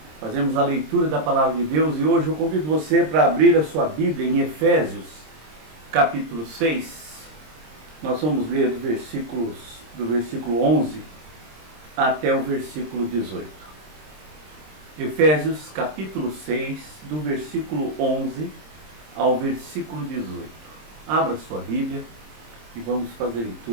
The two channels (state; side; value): late; left; 26 ms